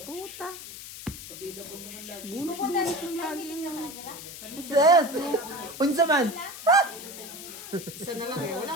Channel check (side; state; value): left; noise; hiss, 12 dB below the sound